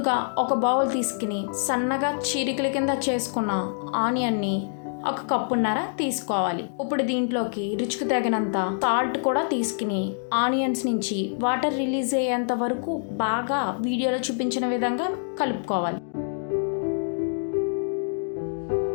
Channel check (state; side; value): silent; right; digital silence